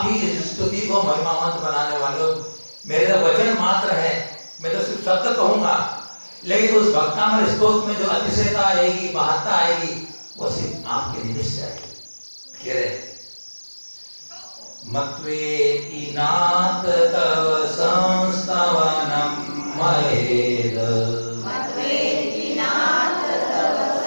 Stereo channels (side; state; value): both; inverted; correlation -1.00